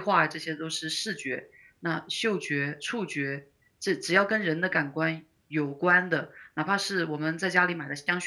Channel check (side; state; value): both; identical; correlation 1.00